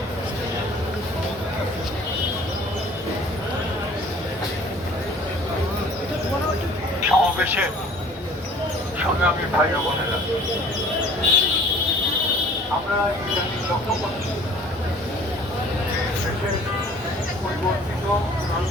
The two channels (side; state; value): both; normal; correlation 0.51